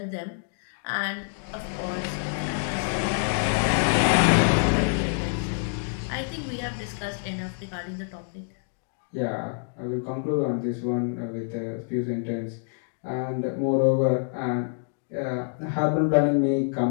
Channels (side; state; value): right; silent; digital silence